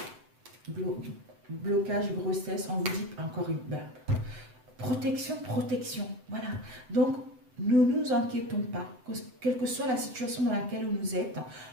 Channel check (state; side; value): late; left; 7.8 ms